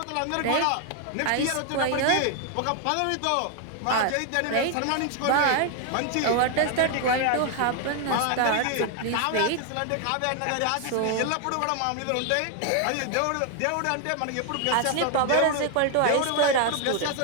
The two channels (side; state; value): both; different; correlation 0.00